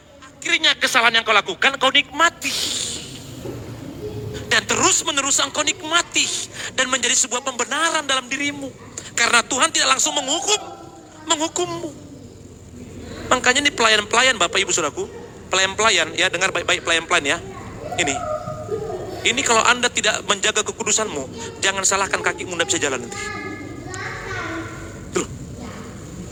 akhirnya kesalahan yang kau lakukan kau nikmati. Dan terus menerus engkau nikmati. Dan menjadi sebuah pembenaran dalam dirimu. Karena Tuhan tidak langsung menghukummu. Makanya ini pelayan-pelayan Bapak Ibu Saudaraku. Pelayan-pelayan ya, dengar baik-baik pelayan-pelayan ya. Ini kalau Anda tidak menjaga kekudusanmu, jangan salahkan kakimu tidak bisa jalan nanti. Tuh.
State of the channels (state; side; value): identical; both; correlation 1.00